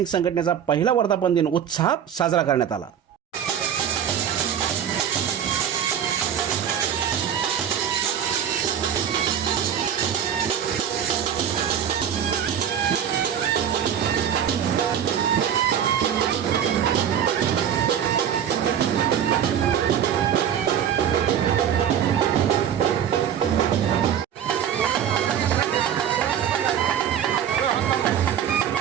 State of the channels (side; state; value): left; quieter; 9.1 dB